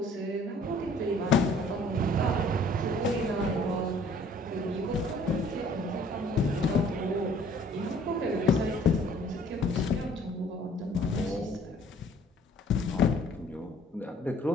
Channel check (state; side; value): normal; both; correlation 0.56